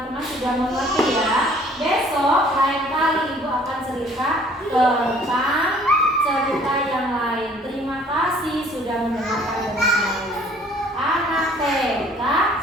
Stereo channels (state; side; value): normal; both; correlation 0.56